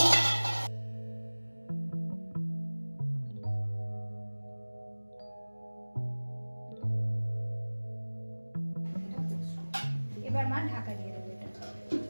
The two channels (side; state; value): both; inverted; correlation -1.00